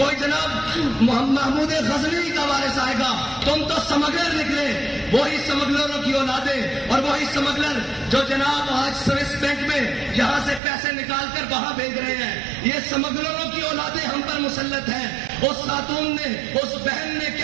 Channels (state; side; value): drops out; left; at 10.6 s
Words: جناب محمود غزنوی کا وارث آئے گا. تم تو سمگلر نکلے. وہی سمگلروں کی اولادیں اور وہی سمگلر جو جناب آج سوئس بینک میں یہاں سے پیسے نکال کر وہاں بھیج رہے ہیں، یہ سمگلروں کی اولادیں ہم پر مسلط ہیں. اس خاتون نے، اس بہن نے